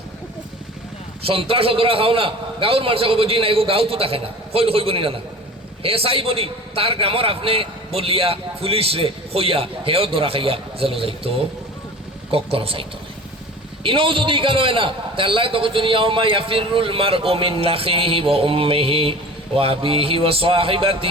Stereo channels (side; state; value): both; normal; correlation 0.40